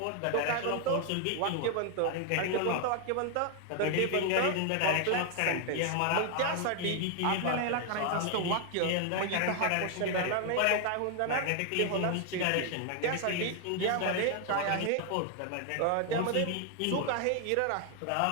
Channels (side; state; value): both; different; correlation 0.00